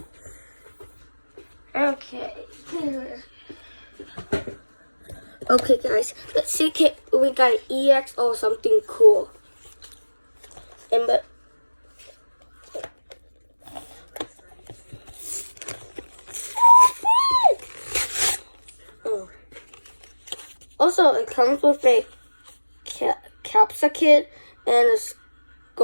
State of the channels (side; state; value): both; inverted; correlation -1.00